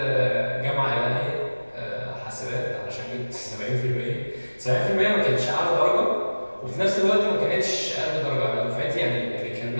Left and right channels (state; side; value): inverted; both; correlation -1.00